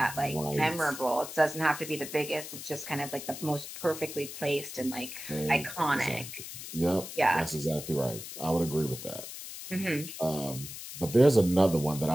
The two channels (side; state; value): left; noise; hiss, 10 dB below the sound